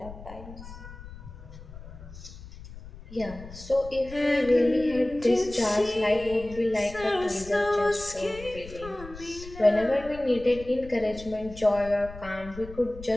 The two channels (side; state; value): left; noise; rumble, 15 dB below the sound